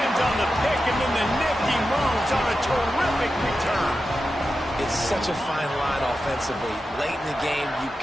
on the pick, and then the nifty moves on a terrific return. It's such a fine line offensively. Late in the game, you've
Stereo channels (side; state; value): both; normal; correlation 0.91